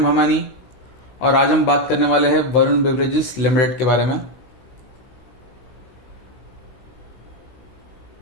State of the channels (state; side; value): late; right; 16 ms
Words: भमानी और आज हम बात करने वाले हैं वरुण बेवरेजेस लिमिटेड के बारे में।